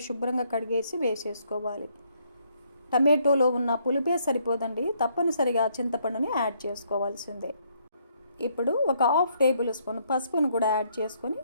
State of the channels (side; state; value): both; inverted; correlation -0.70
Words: శుభ్రంగా కడిగేసి వేసేసుకోవాలి. టమాటోలో ఉన్న పులుపే సరిపోదండి, తప్పనిసరిగా చింతపండుని యాడ్ చేసుకోవాల్సిందే. ఇప్పుడు ఒక 1/2 టేబుల్ స్పూన్ పసుపును కూడా యాడ్ చేసుకొని